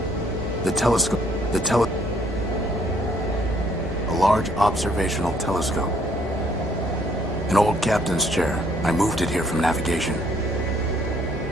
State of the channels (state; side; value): normal; both; correlation 0.66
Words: A large observational telescope. An old captain's chair. I moved it here from navigation.